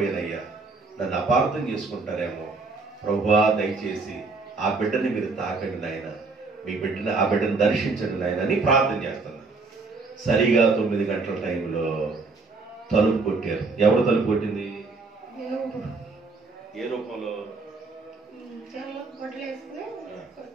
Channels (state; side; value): quieter; left; 3.9 dB